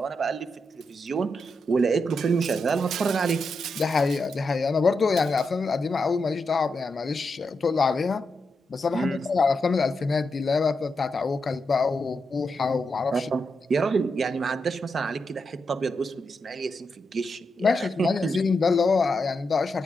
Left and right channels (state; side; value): normal; both; correlation 0.85